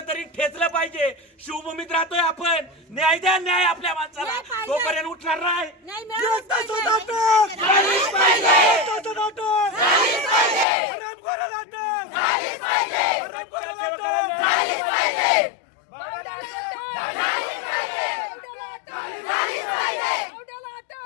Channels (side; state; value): right; drops out; at 10.7 s